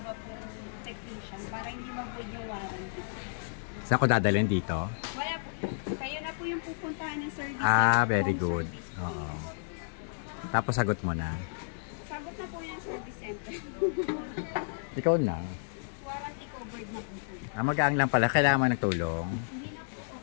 po technician para hindi mag-void yung warranty. Saan ko dadalhin dito? Wala po. Kayo na po yung pupuntahan ng service. Ah, very good. Oo. Tapos sagot mo na. Sagot na po yung service center. Ikaw na. Warranty covered na po. Magaang lang pala. Kailangan mo ng tulong? Hindi na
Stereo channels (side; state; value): right; silent; digital silence